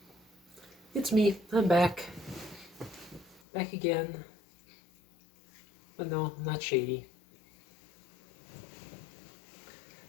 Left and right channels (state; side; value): drops out; right; at 3.4 s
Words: it's me. I'm back. Back again. But no, I'm not shady.